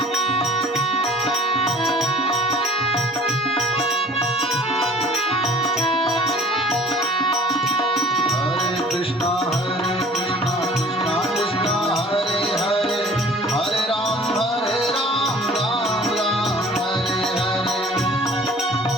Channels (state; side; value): normal; both; correlation 0.49